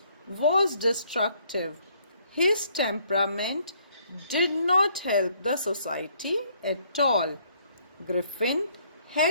was destructive. His temperament did not help the society at all. Griffin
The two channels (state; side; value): inverted; both; correlation -0.66